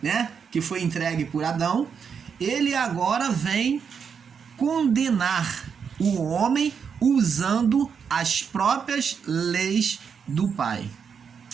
né, que foi entregue por Adão, ele agora vem condenar o homem usando as próprias leis do Pai,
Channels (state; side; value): quieter; left; 6.6 dB